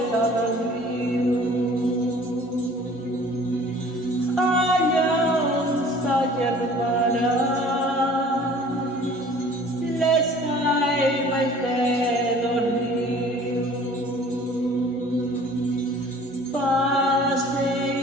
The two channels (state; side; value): normal; both; correlation 0.49